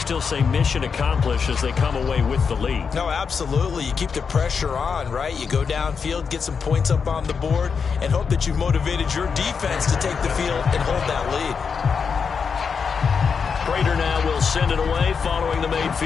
say mission accomplished as they come away with the lead. No, absolutely. You keep the pressure on, right? You go downfield, get some points up on the board, and hope that you've motivated your defense to take the field and hold that lead. Prater now will send it away following the made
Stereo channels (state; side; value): quieter; right; 5.9 dB